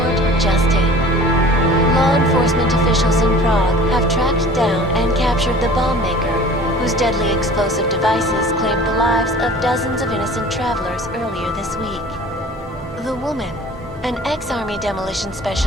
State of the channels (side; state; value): both; normal; correlation 0.45